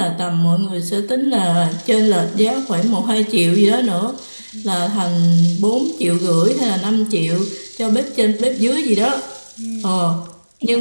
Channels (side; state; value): both; inverted; correlation -1.00